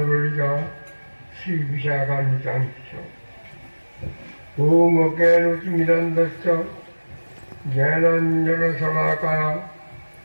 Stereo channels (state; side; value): inverted; both; correlation -1.00